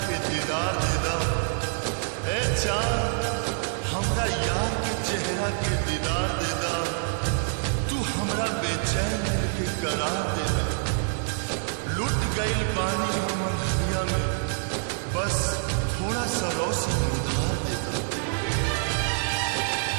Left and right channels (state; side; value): silent; left; 59 dB below the other